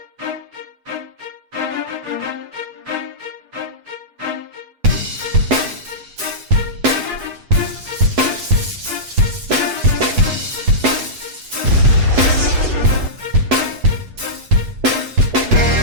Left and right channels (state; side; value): late; left; 8.1 ms